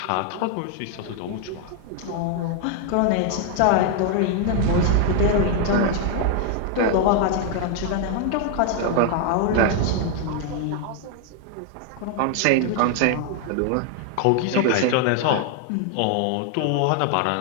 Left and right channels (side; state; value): both; different; correlation 0.00